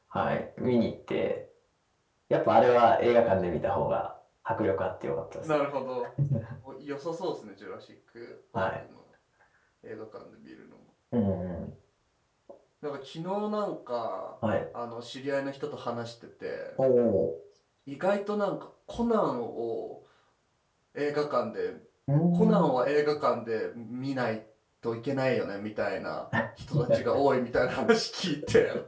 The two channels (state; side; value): identical; both; correlation 1.00